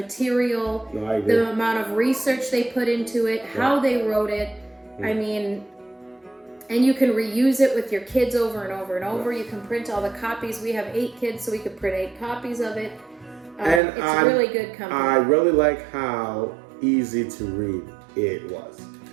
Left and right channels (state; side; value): drops out; left; at 13.8 s